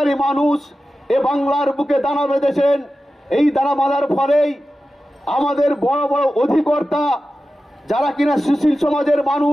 মানুষ এ বাংলার বুকে দানা বেঁধেছেন। এই দানা বাঁধার ফলেই আমাদের বড় বড় অধিকর্তা যারা কিনা সুশীল সমাজের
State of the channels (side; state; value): both; normal; correlation 0.93